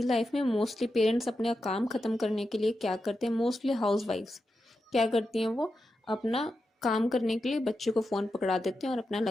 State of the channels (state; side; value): normal; both; correlation 0.88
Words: लाइफ में मोस्टली पेरेंट्स अपने काम ख़त्म करने के लिए क्या करते हैं, मोस्टली हाउसवाइफ्स क्या करती हैं, वो अपना काम करने के लिए बच्चे को फ़ोन पकड़ा देते हैं और अपना